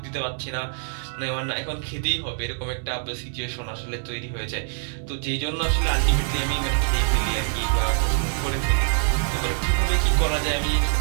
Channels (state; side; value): silent; left; 58 dB below the other